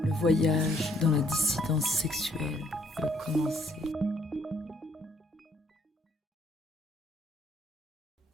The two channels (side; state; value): both; normal; correlation 0.67